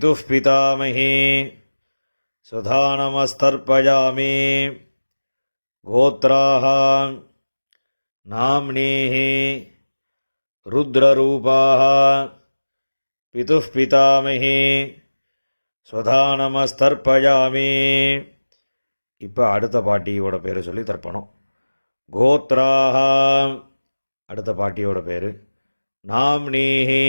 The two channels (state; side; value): inverted; both; correlation -1.00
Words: पितामही स्वधानमस्तर्पयामि गोत्राः नाम्नीः रुद्ररूपाः पितुः पितामही स्वधानमस्तर्पयामि இப்போ அடுத்த பாட்டியோட பேர் சொல்லி தர்ப்பணம். கோத்ராஹ அடுத்த பாட்டியோட பேர். நாம்னீஹி